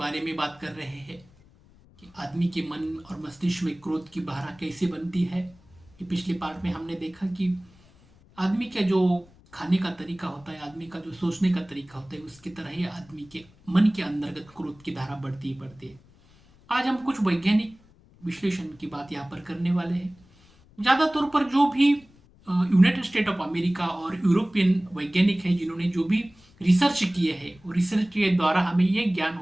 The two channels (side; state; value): left; noise; rumble, 28 dB below the sound